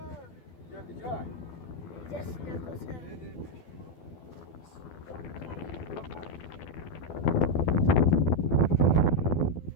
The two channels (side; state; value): right; late; 12 ms